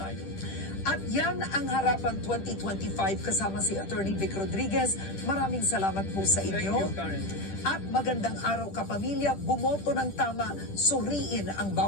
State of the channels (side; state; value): right; late; 10 ms